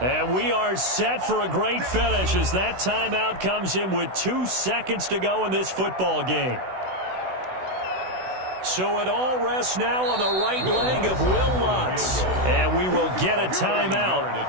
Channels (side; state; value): left; late; 16 ms